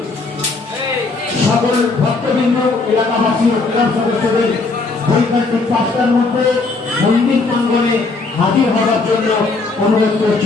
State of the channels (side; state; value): right; quieter; 3.8 dB